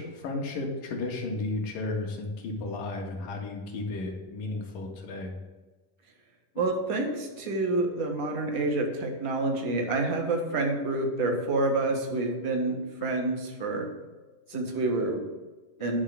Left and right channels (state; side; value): late; right; 11 ms